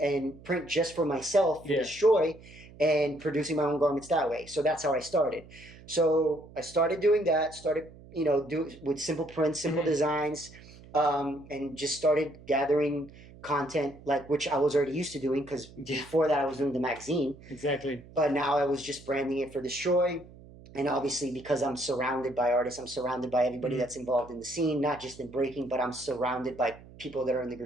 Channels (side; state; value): right; noise; hum, 20 dB below the sound